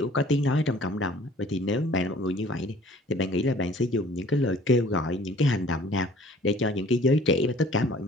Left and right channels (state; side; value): normal; both; correlation 0.52